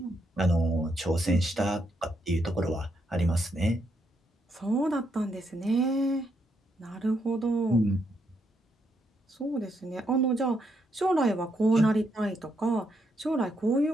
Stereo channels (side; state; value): both; normal; correlation 0.78